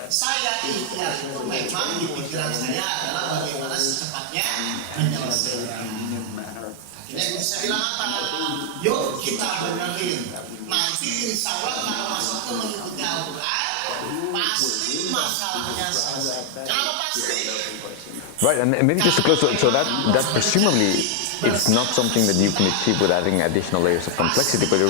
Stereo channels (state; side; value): different; both; correlation 0.00